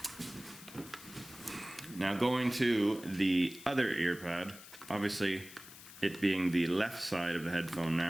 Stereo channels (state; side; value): noise; left; hiss, 17 dB below the sound